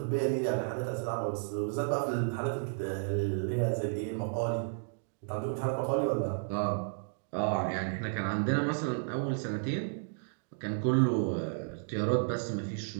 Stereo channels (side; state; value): left; silent; digital silence